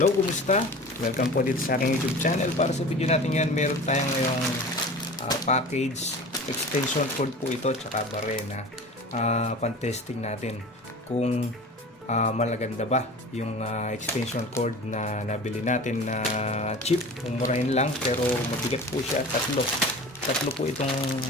kumusta? Welcome po dito sa aking YouTube channel. Para sa video natin yan, meron tayong ngayong package extension cord po ito tsaka barena. Pan-testing natin kung malaganda ba yung extension cord na nabili natin na cheap. Umurahin lang pero mabigat po siya. Tatlo po itong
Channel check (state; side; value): normal; both; correlation 0.38